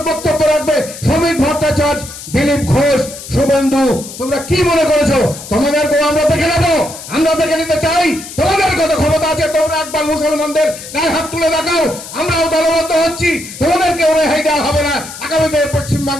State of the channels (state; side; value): noise; left; hiss, 13 dB below the sound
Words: বক্তব্য রাখবে। শ্রমিক ভট্টাচার্য, দিলীপ ঘোষ, শুভেন্দু, তোমরা কি মনে করেছো? তোমাদেরকেও আমরা দেখে নেবো, আমরা দেখে নিতে চাই। তোমাদের কত ক্ষমতা আছে, তোমরা একবার মুসলমানদের গায়ে হাত তুলে দেখাও। আমরাও দলবদ্ধ হচ্ছি, তোমাদেরকেও রেহাই দেওয়া হবে না। আগামীতে পশ্চিম